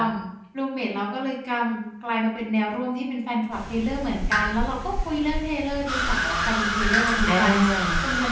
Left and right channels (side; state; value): both; identical; correlation 1.00